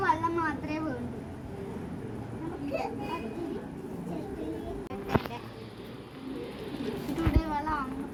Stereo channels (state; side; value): identical; both; correlation 1.00